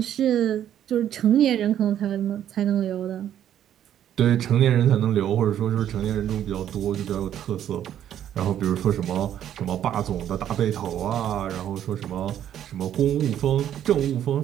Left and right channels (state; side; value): quieter; left; 10.6 dB